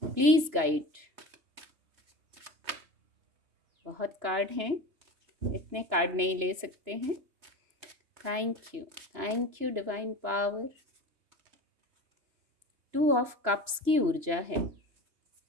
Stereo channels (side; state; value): left; late; 3.0 ms